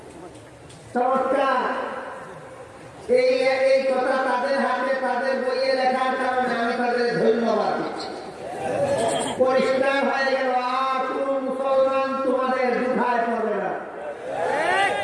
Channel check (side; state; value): both; identical; correlation 1.00